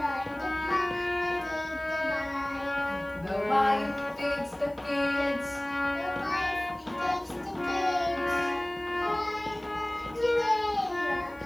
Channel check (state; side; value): noise; left; hiss, 29 dB below the sound